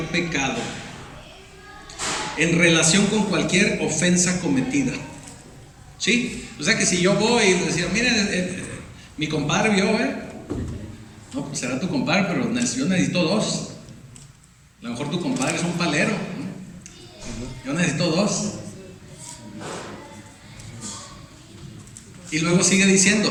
pecado, en relación con cualquier ofensa cometida. ¿Sí? O sea que si yo voy y les digo, miren, mi compadre vio, no, pues será tu compadre, pero yo necesito dos. A lo mejor tu compadre es un palero, ¿no? Yo necesito dos. Y luego sigue diciendo:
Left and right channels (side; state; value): both; identical; correlation 1.00